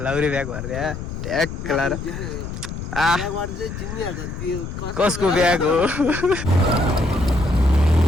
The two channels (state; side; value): noise; left; rumble, 7 dB below the sound